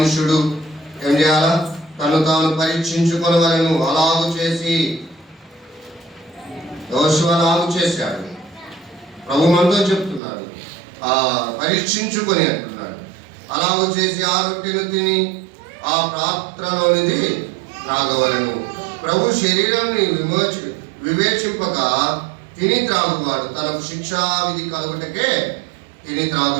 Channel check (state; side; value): drops out; left; at 10.2 s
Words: ఏం చేయాలా? తను తాను పరీక్షించుకొనవలెను. అలాగు చేసి యోషువ అలాగు చేశాడు. ప్రభు మనతో చెప్తున్నాడు, పరీక్షించుకొని అంటున్నాడు. అలాగు చేసి ఆ రొట్టెను తిని ఆ పాత్రలోనిది త్రాగవలెను. ప్రభు శరీరాన్ని వివేచింపక తిని త్రాగువాడు తనకు శిక్షా విధి కలుగుటకే తిని